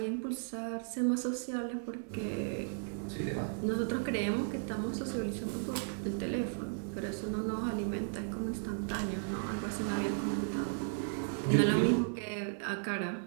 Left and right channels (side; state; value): left; silent; 54 dB below the other